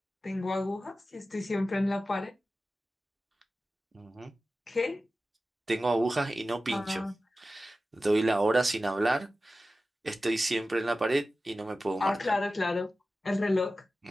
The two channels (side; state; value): both; normal; correlation 0.94